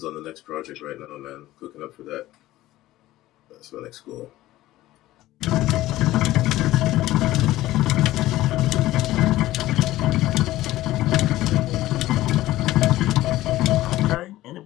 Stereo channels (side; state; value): right; quieter; 16.0 dB